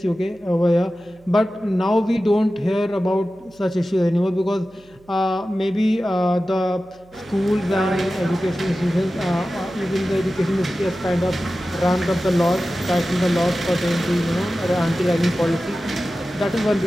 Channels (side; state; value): right; noise; hum, 29 dB below the sound